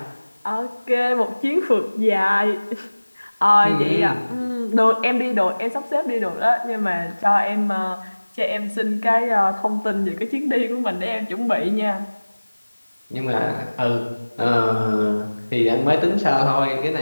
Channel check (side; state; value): both; inverted; correlation -1.00